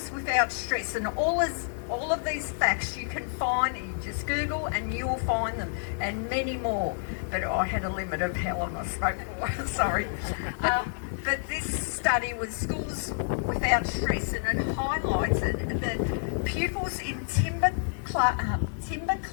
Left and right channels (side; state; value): right; silent; digital silence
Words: Without Stress, and all of these facts you can find, you just Google and you will find them, and many more. But I had a limit of how long I spoke for, sorry. But this study was Schools Without Stress, and it highlighted that pupils in timber-clad